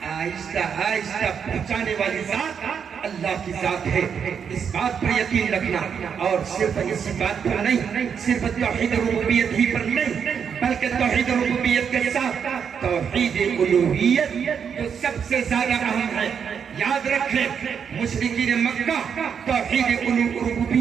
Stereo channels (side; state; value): left; quieter; 7.2 dB